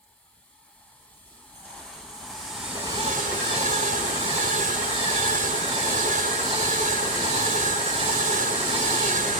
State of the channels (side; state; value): both; normal; correlation -0.03